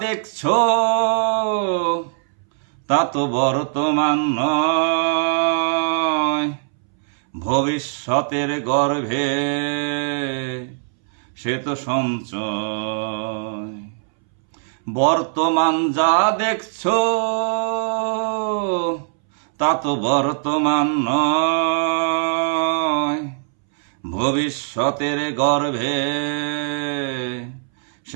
দেখছো তা তো বর্তমান নয়, ভবিষ্যতের গর্ভে সে তো সঞ্চয়। বর্তমান যা দেখছো তা তো বর্তমান নয়, ভবিষ্যতের গর্ভে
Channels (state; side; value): silent; left; 64 dB below the other